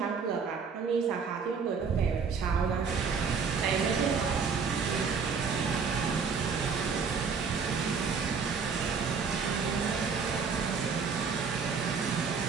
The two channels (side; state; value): left; quieter; 5.6 dB